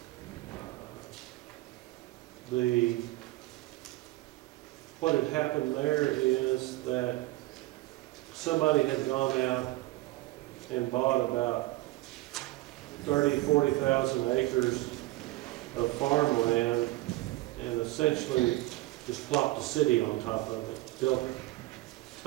What had happened there is that somebody had gone out and bought about 40,000 acres of farmland and essentially just plopped a city on top of it, built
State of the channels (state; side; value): quieter; left; 18.9 dB